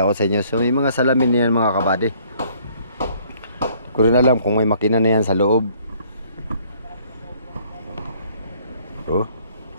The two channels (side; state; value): both; inverted; correlation -0.60